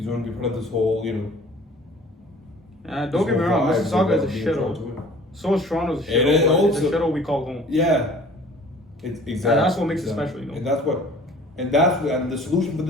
want to be part of this whole, don't get me wrong. Mississauga is a shithole. So is Toronto's a shithole. It's a shithole we call home. Yeah, it's exactly. And that's what makes it special, And and the solution for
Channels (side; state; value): both; normal; correlation 0.49